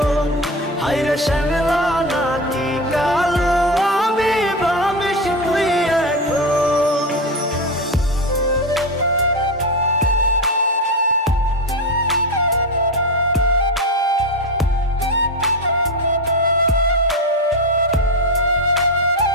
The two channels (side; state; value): both; normal; correlation 0.17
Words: হায়রে শ্যামলা নাকি কালো আমি ভাবিস তুই এখন।